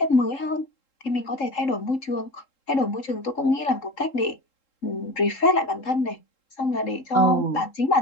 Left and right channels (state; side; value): late; right; 3.7 ms